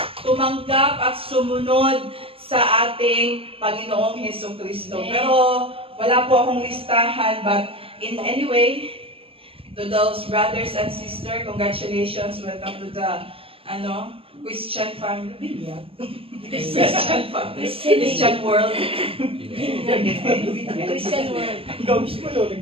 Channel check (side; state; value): left; late; 0.27 ms